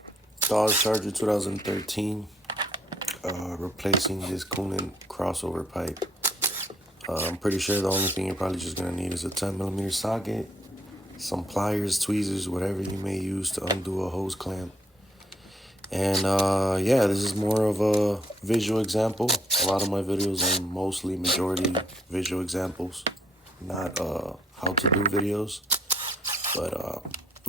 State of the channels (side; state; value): both; normal; correlation 0.68